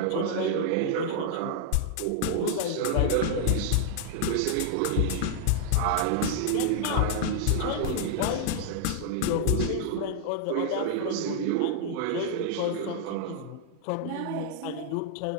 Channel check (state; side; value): different; both; correlation -0.01